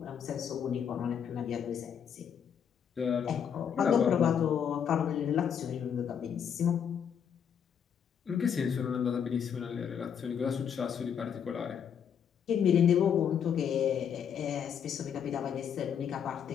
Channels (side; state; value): right; quieter; 8.0 dB